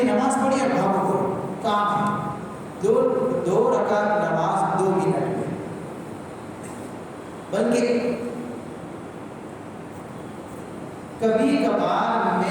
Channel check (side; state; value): both; identical; correlation 1.00